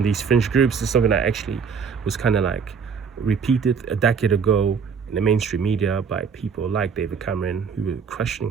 these fringe groups. It's something that actually was kind of like repeated a decade ago in the mainstream media by people like David Cameron, who were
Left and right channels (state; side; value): quieter; left; 6.2 dB